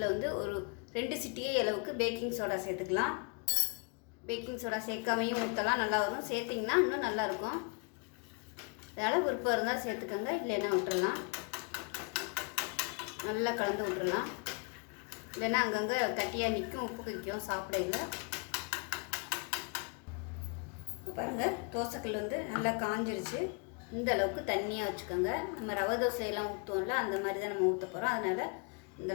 வந்து ஒரு 2 சிட்டிகை அளவுக்கு பேக்கிங் சோடா சேர்த்துக்கலாம். பேக்கிங் சோடா சேர்க்காமையும் ஊற்றலாம், நல்லா வரும். சேர்த்திங்கன்னா இன்னும் நல்லாயிருக்கும். அதனால் விருப்பம் இருந்தால் சேர்த்துக்கோங்க, இல்லைன்னா விட்டுறலாம். நல்லா கலந்து விட்டுறலாம், இல்லைன்னா அங்கங்கே கட்டியாக நிற்கும், உப்பு வைக்கும் சாப்பிடையில. பாருங்கள், தோசைக்கல் வந்து நல்லா காஞ்சிருச்சு. இந்த அளவுக்கு தண்ணியாக வச்சுக்கோங்க. நம்ம ரவை தோசையெல்லாம் ஊற்றுவோம்ல, அந்த மாதிரி தான் நம்ம ஊற்ற போகிறோம். அதனால் இந்த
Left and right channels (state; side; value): quieter; right; 36.2 dB